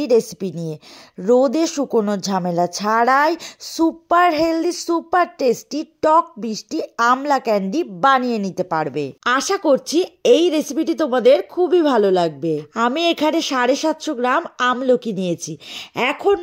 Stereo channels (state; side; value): identical; both; correlation 1.00